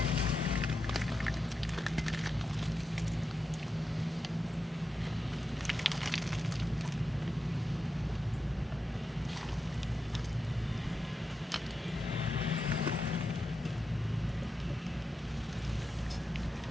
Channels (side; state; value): both; normal; correlation 0.88